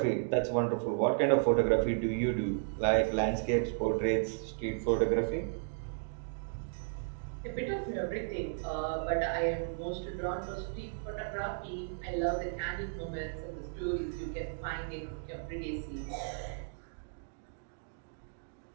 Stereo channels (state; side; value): silent; left; digital silence